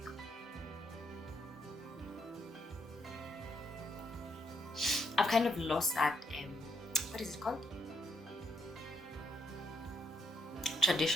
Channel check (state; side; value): normal; both; correlation 0.75